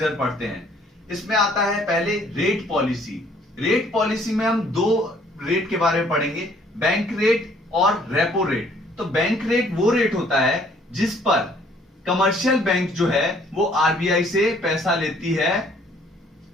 पढ़ते हैं। इसमें आता है पहले रेट पॉलिसी। रेट पॉलिसी में हम दो रेट के बारे में पढ़ेंगे, बैंक रेट और रेपो रेट। तो बैंक रेट वो रेट होता है जिस पर कमर्शियल बैंक जो है वो आरबीआई से पैसा लेती है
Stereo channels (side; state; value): both; normal; correlation 0.61